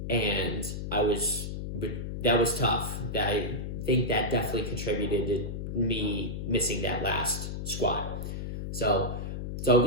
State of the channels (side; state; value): left; noise; hum, 5 dB below the sound